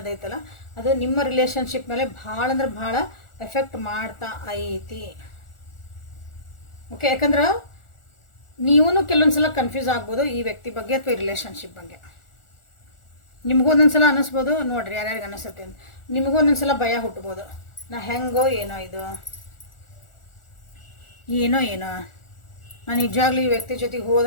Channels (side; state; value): right; late; 1.4 ms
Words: ಅದು ನಿಮ್ಮ ರಿಲೇಷನ್ಶಿಪ್ ಮೇಲೆ ಭಾಳ ಅಂದ್ರೆ ಭಾಳ ಎಫೆಕ್ಟ್ ಮಾಡ್ತಾ ಐತಿ. ಓಕೆ, ಯಾಕಂದ್ರೆ ನೀವೂ ಕೆಲವೊಂದ್ಸಲ ಕನ್ಫ್ಯೂಸ್ ಆಗ್ಬೋದು ಈ ವ್ಯಕ್ತಿ ಬಗ್ಗೆ ಅಥವಾ ಈ ರಿಲೇಷನ್ಶಿಪ್ ಬಗ್ಗೆ. ನಿಮಗೂ ಒಂದೊಂದ್ಸಲ ಅನ್ನಿಸ್ಬೋದು, ನೋಡ್ರಿ ಯಾರ್ಯಾರಿಗೆ ಅನ್ನಿಸುತ್ತೆ ಅಂತ. ನಿಮಗೂ ಒಂದೊಂದ್ಸಲ ಭಯ ಹುಟ್ಬೋದು, ನಾ ಹೆಂಗೋ ಏನೋ ಇದು ಏನೋ ನಾನು ನಿಜವಾಗ್ಲೂ ಈ ವ್ಯಕ್ತಿ ಜೊತೆಗೆ